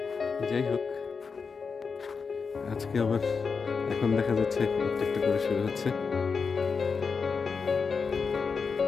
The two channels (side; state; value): right; quieter; 5.3 dB